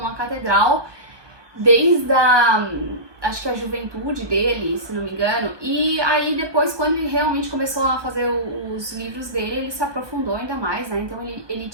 a catedral desde acho que a juventude dele, se não me engano, e aí depois, quando ele realmente começou a fazer os livros dele, ele se aprofundou ainda mais, né, então ele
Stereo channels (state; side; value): late; left; 1.2 ms